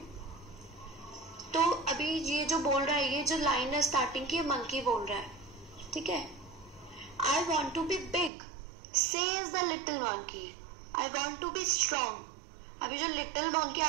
तो अभी ये जो बोल रहा है, ये जो लाइन है स्टार्टिंग की, मंकी बोल रहा है, ठीक है. I want to be big says the little monkey, I want to be strong. अभी जो लिटिल मंकी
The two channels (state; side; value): drops out; left; at 8.3 s